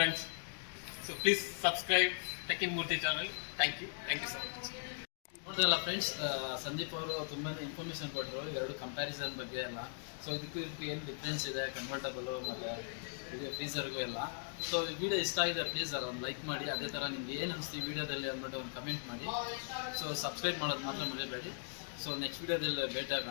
So please subscribe tech in Murthy channel. Thank you so much. ನೋಡಿದ್ರಲ್ಲ ಫ್ರೆಂಡ್ಸ್, ಸಂದೀಪ್ ಅವರು ತುಂಬಾ ಇನ್ಫಾರ್ಮೇಷನ್ ಕೊಟ್ಟರು ಎರಡು ಕಂಪ್ಯಾರಿಸನ್ ಬಗ್ಗೆ ಎಲ್ಲ. ಸೊ ಇದಕ್ಕೂ ಏನು ಡಿಫ್ರೆನ್ಸ್ ಇದೆ ಕನ್ವರ್ಟಬಲು ಮತ್ತು ಇದು ಫ್ರೀಸರ್ಗೂ ಎಲ್ಲ. ಸೊ ವಿಡಿಯೋ ಇಷ್ಟ ಆಗಿದೆ ಪ್ಲೀಸ್ ಒಂದು ಲೈಕ್ ಮಾಡಿ. ಅದೇ ಥರ ನಿಮ್ಗೆ ಏನು ಅನಿಸ್ತು ಈ ವಿಡಿಯೋದಲ್ಲಿ ಅಂದ್ಬಿಟ್ಟು ಒಂದು ಕಮೆಂಟ್ ಮಾಡಿ. ಸೊ ಸಬ್ಸ್ಕ್ರೈಬ್ ಮಾಡೋದು ಮಾತ್ರ ಮರಿಬೇಡಿ. ಸೊ ನೆಕ್ಸ್ಟ್ ವಿಡಿಯೋದಲ್ಲಿ ಭೇಟಿ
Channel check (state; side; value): silent; right; digital silence